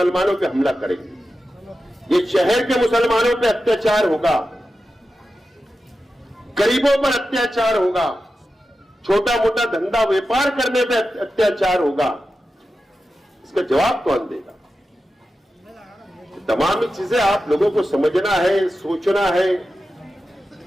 पे हमला करेंगे। ये शहर के मुसलमानों पे अत्याचार होगा, गरीबों पर अत्याचार होगा, छोटा मोटा धंधा व्यापार करने पे अत्याचार होगा। इसका जवाब कौन देगा? तमाम चीजें आप लोगों को समझना है, सोचना है।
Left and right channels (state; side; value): normal; both; correlation 0.91